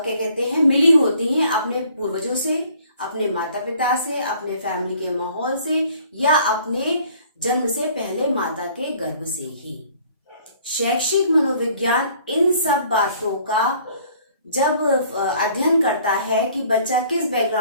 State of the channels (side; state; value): both; inverted; correlation -0.57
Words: कहते हैं, मिली होती हैं अपने पूर्वजों से, अपने माता पिता से, अपने फैमिली के माहौल से या अपने जन्म से पहले माता के गर्भ से ही। शैक्षिक मनोविज्ञान इन सब बातों का जब अध्ययन करता है कि बच्चा किस